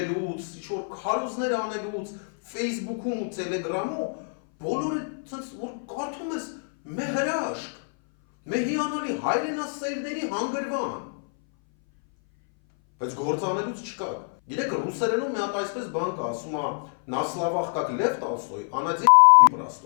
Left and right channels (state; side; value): silent; right; 59 dB below the other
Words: ինչ-որ քարոզներ անելուց, Facebook-ում ու Telegram-ում, բոլորը սենց որ կարդում ես մե հրաշք, մե հիանալի հայրենասերների հանգրվան, բայց գործանելուց չկաք։ Գիտեք, ռուսերենում մի հատ այսպես բան կա, ասում է «На словах как Лев Толстой, а на деле